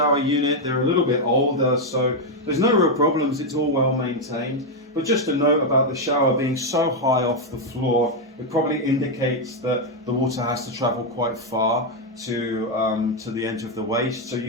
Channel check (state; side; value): normal; both; correlation 0.02